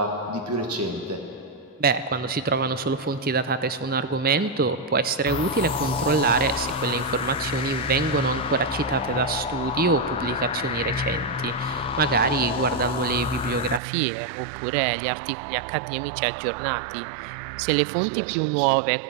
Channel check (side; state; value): left; drops out; at 13.8 s